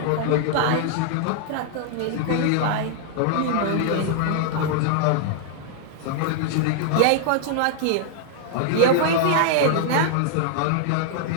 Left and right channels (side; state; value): both; different; correlation 0.00